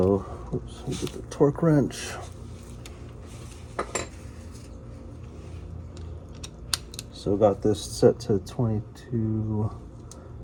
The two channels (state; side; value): identical; both; correlation 1.00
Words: oops, let me get the torque wrench. So got this set to